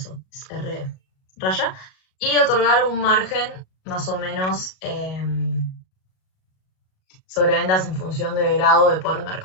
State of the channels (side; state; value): right; late; 38 ms